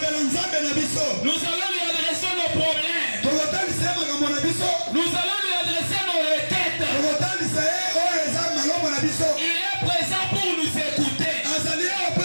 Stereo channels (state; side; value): inverted; both; correlation -1.00